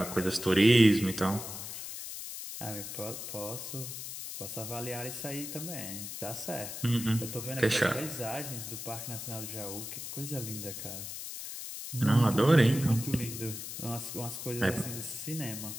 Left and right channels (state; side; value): noise; left; hiss, 8 dB below the sound